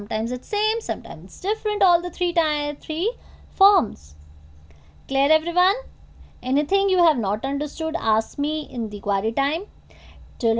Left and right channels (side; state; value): both; identical; correlation 1.00